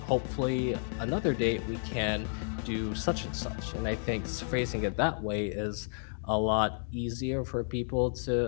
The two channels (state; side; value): silent; right; digital silence